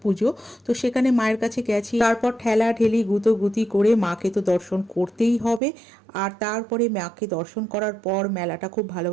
পুজো, তো সেখানে মায়ের কাছে গেছি। তারপর ঠেলা ঠেলি গুতি করে মাকে তো দর্শন করতেই হবে। আর তারপরে মাকে দর্শন করার পর মেলাটা খুব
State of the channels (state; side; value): drops out; left; at 5.6 s